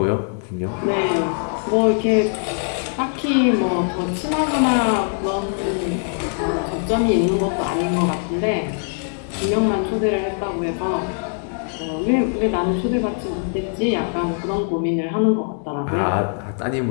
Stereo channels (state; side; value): silent; right; 55 dB below the other